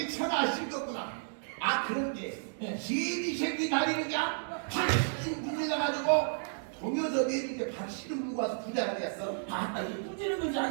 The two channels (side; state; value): left; silent; digital silence